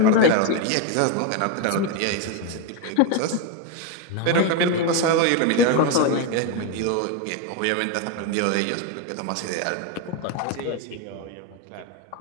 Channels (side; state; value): both; different; correlation 0.02